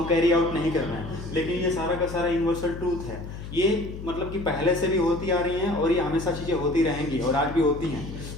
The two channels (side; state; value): left; noise; hum, 10 dB below the sound